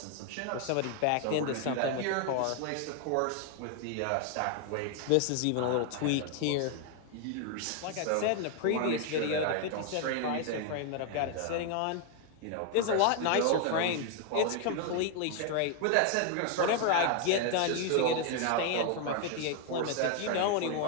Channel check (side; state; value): both; different; correlation 0.00